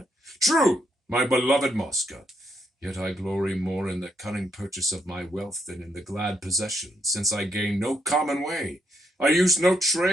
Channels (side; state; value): both; normal; correlation 0.76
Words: True, my beloved Mosca. Yet I glory more in the cunning purchase of my wealth than in the glad possession, since I gain no common way. I use no